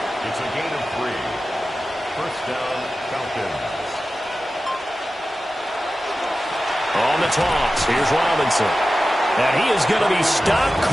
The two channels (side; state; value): both; normal; correlation 0.94